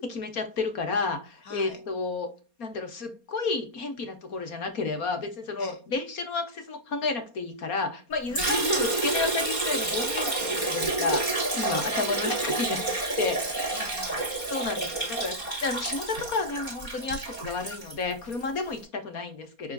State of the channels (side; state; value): right; late; 4.3 ms